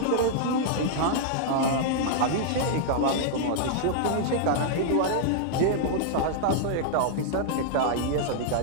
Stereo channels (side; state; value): both; different; correlation -0.01